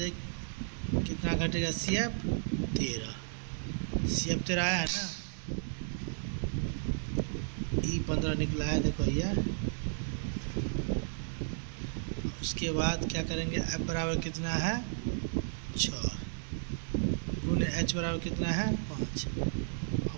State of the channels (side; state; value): left; silent; digital silence